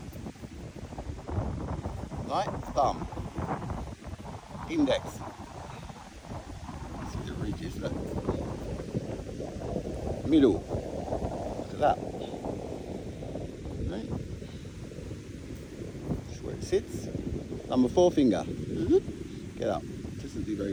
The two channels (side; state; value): both; identical; correlation 1.00